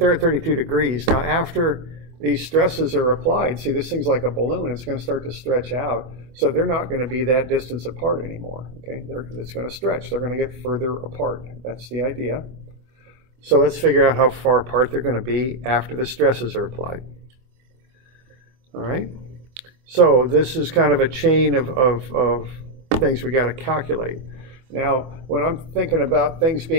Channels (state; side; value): late; left; 25 ms